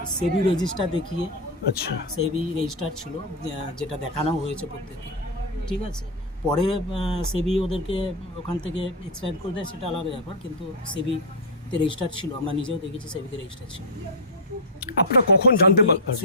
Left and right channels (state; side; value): normal; both; correlation 0.00